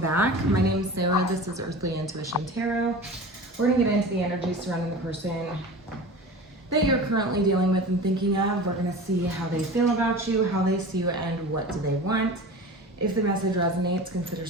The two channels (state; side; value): normal; both; correlation 0.35